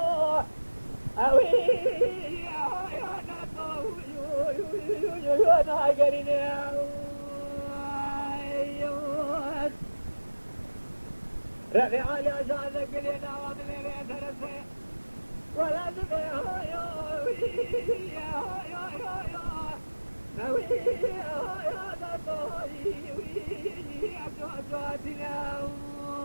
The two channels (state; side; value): inverted; both; correlation -1.00